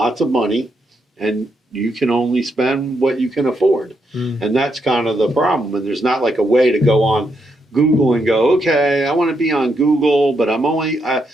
of money, and you can only spend what you can afford. And that's kind of the problem. And there's not like a way to go on Google and go, okay, I want to be on Google, but I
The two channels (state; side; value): normal; both; correlation 0.80